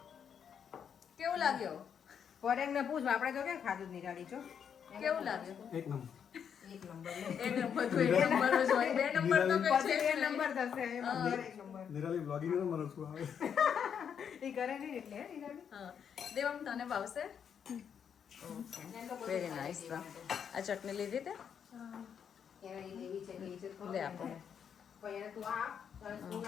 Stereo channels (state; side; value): quieter; right; 7.8 dB